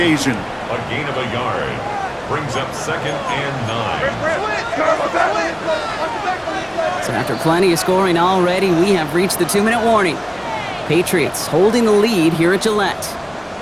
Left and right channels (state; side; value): identical; both; correlation 1.00